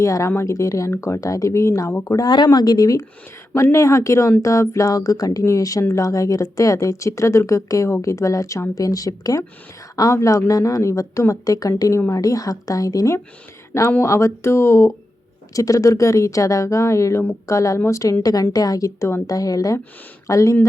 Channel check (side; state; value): both; normal; correlation 0.90